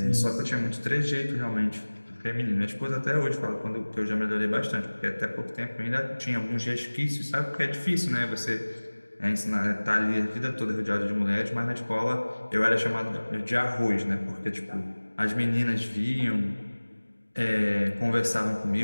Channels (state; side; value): inverted; both; correlation -1.00